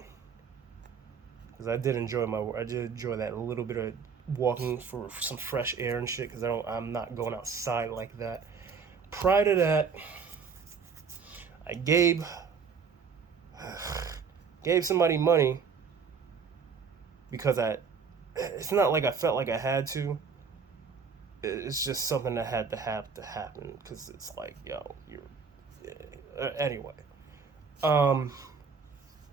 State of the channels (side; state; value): left; quieter; 5.8 dB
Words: because I did enjoy that a little bit of walking for some fresh air and shit. Because I'm not going outside like that. Prior to that, I gave somebody money because it's not like I felt like I had to. It's just something that had to have to happen because it's like, yo, anyway. Let